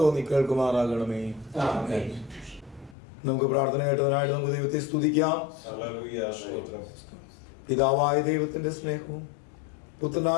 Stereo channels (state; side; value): drops out; right; at 3.0 s